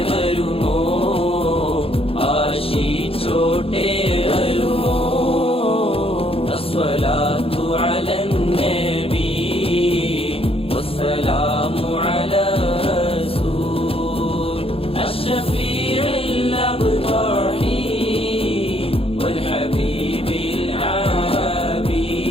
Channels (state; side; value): late; right; 0.27 ms